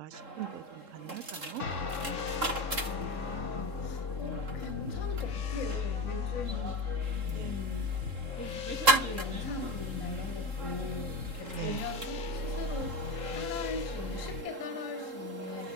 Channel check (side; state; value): left; late; 3.7 ms